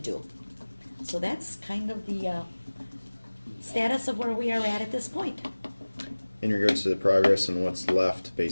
do. So that's kind of the status of where we are at this point. In regards to the progress and what's left,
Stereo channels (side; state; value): both; inverted; correlation -1.00